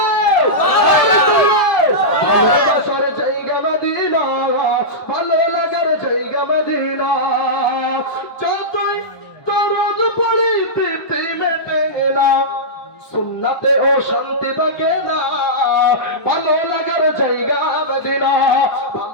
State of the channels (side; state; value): right; late; 1.2 ms